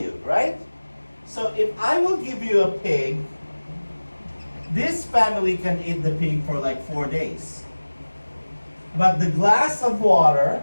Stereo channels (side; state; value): both; inverted; correlation -1.00